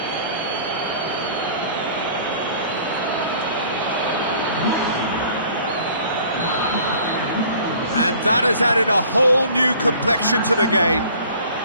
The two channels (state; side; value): inverted; both; correlation -0.51